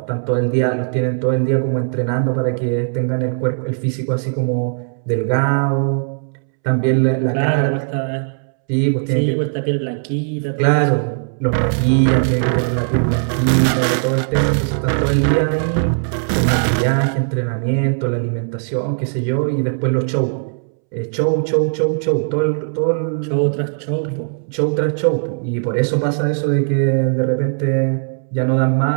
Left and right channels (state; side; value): silent; left; 67 dB below the other